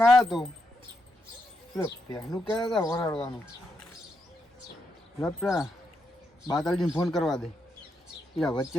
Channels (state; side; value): normal; both; correlation 0.82